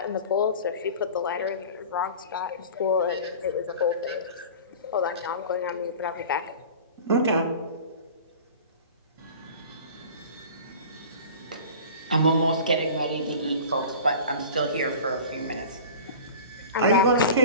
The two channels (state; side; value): inverted; both; correlation -0.39